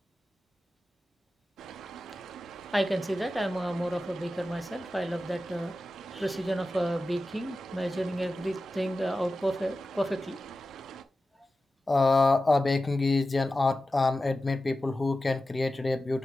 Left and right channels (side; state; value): both; normal; correlation 0.93